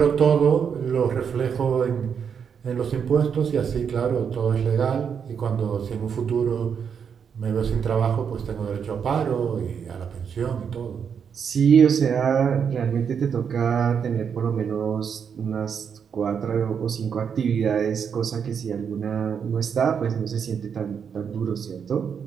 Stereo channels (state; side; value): quieter; left; 7.1 dB